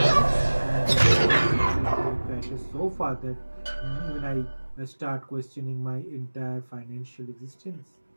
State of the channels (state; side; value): inverted; both; correlation -1.00